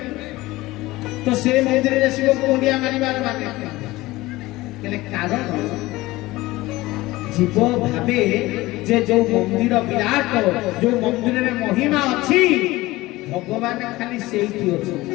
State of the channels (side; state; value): right; quieter; 19.1 dB